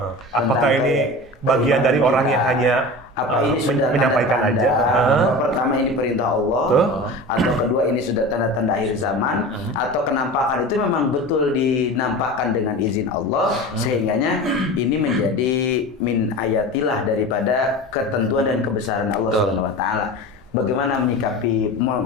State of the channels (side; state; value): both; normal; correlation 0.32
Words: Apakah ini bagian dari orang yang hanya apa ini sudah menyampaikan tanda-tanda aja? apa pertama ini perintah Allah atau kedua ini sudah tanda-tanda akhir zaman atau kenampakan itu memang betul dinampakkan dengan izin Allah sehingganya ini menjadi min ayatilah daripada ketentuan dan kebesaran Allah Subhanahu wa taala. Bagaimana menyikapi